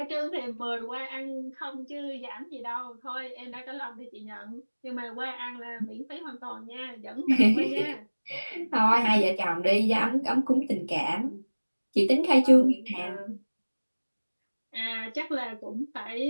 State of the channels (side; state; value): both; inverted; correlation -1.00